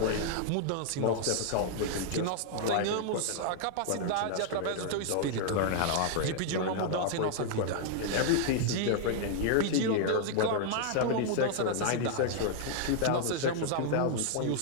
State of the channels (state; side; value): different; both; correlation -0.01